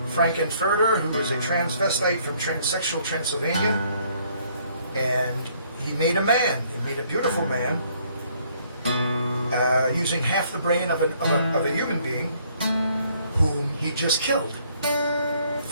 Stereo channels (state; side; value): inverted; both; correlation -0.65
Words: Frank-N-Furter, who is a transvestite from transsexual Transylvania, and he made a man. He made a beautiful man using half the brain of a human being, whom he just killed